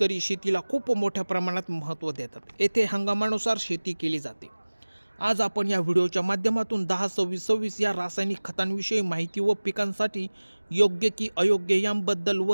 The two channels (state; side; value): inverted; both; correlation -1.00